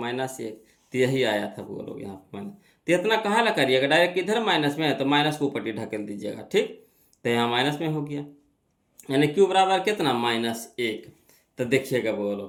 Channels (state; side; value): identical; both; correlation 1.00